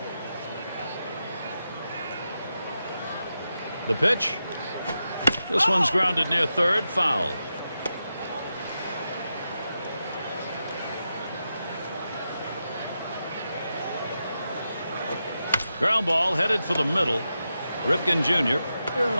The pitch. This one's grounded near third, foul. Ground ball headed for the middle. Ripken Jr.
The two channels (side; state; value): both; inverted; correlation -0.88